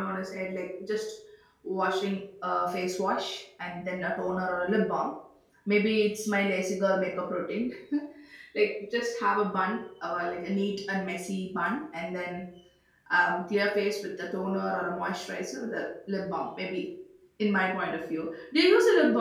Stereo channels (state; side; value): identical; both; correlation 1.00